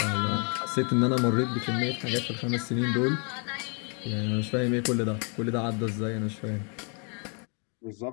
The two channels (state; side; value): quieter; right; 37.0 dB